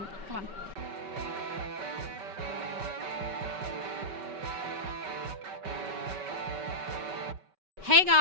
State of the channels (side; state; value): left; late; 5.2 ms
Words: Come on. Hey